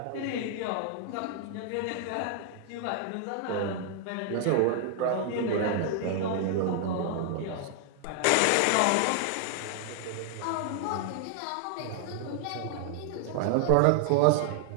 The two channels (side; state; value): both; different; correlation 0.00